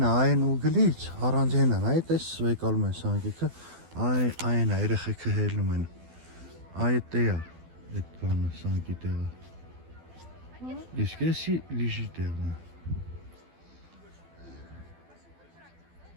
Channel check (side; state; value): left; late; 12 ms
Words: այն ուգլից առանձին են, այդ էս վեկալում են սանկիկը, այն է երեխեքը հելնում են։ Այդ է այդ բանը սանկի տեղը։ Իսկ էսի լիժի տեղն է։